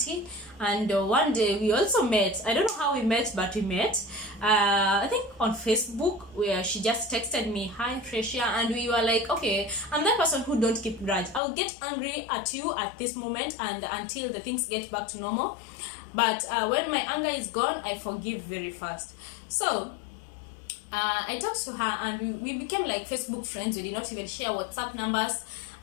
And one day we also met. I don't know how we met, but we met. I think on Facebook, where she just texted me, "Hi Freshia," and we were like, okay, I'm that person who don't keep grudge. I'll get angry at you at this moment, and until the things get back to normal. But when my anger is gone, I forgive very fast. So I talked to her, and we became like Facebook friends. We did not even share WhatsApp numbers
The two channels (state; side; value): drops out; right; at 11.4 s